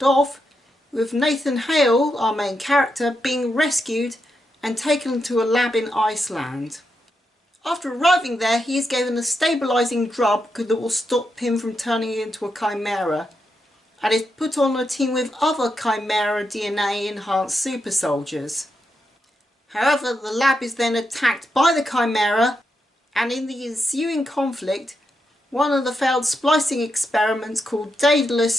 off, with Nathan Hale, our main character, being rescued and taken to a lab in Iceland. After arriving there, he is given a stabilising drug that will stop him from turning into a chimera, and is put on a team with other chimera DNA enhanced super soldiers. However, the lab is then attacked by the chimera, and in the ensuing conflict, one of the failed splicing experiments called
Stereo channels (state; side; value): normal; both; correlation 0.84